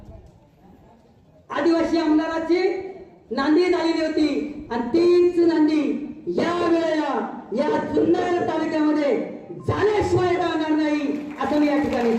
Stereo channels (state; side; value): identical; both; correlation 1.00